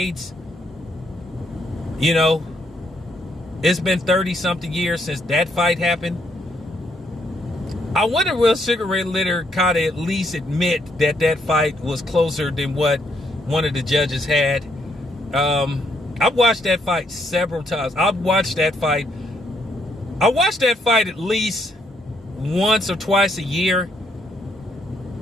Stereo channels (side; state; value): both; normal; correlation 0.73